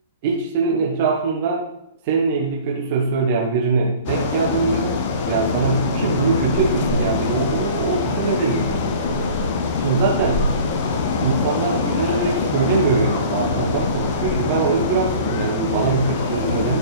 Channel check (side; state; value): both; inverted; correlation -0.43